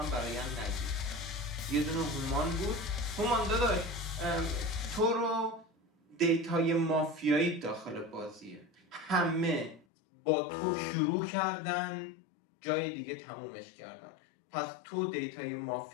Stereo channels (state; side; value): drops out; right; at 9.9 s